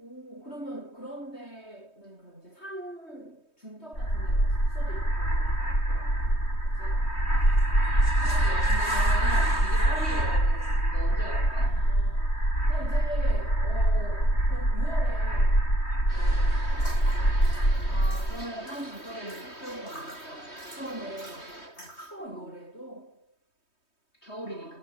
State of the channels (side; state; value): right; late; 3.2 ms